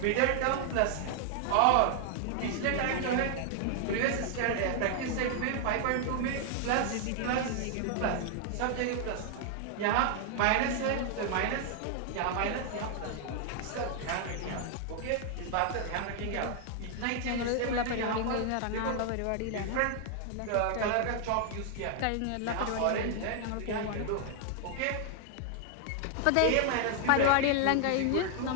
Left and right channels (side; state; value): both; different; correlation 0.00